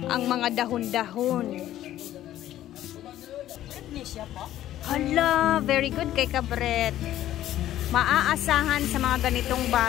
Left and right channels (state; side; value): quieter; right; 13.0 dB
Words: Ang mga dahon-dahon. Hala, very good kay Kabret. Maaasahan sa mga ganitong